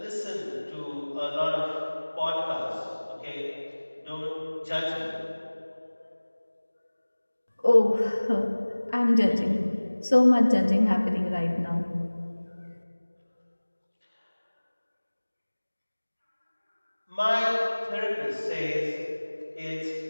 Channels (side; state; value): both; inverted; correlation -1.00